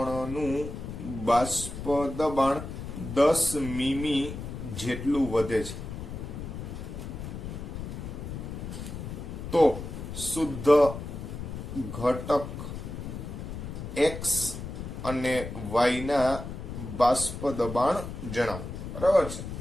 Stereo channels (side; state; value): left; noise; rumble, 8 dB below the sound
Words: બાષ્પ દબાણ 10 મીમી જેટલું વધે છે. તો શુદ્ધ ઘટક એક્સ અને વાય ના બાષ્પ દબાણ જણાવો, બરાબર છે.